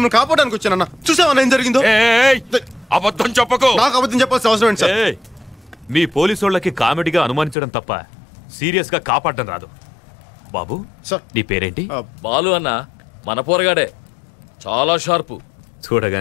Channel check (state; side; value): drops out; right; at 7.6 s